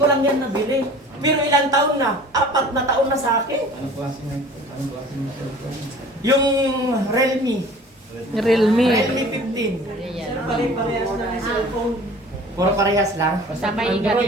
lang yan nabili. Pero ilang taon na? 4 na taon na sa akin. Anong klase ng cellphone? Yung Realme. Realme. Realme 15. Pare-parehas na ng cellphone. Puro parehas lang. Basta may ingat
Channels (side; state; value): both; normal; correlation 0.46